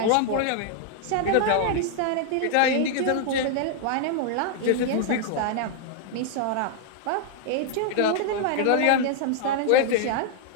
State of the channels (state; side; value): different; both; correlation 0.00